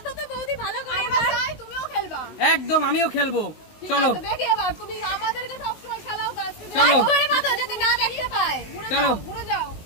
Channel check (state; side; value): late; right; 19 ms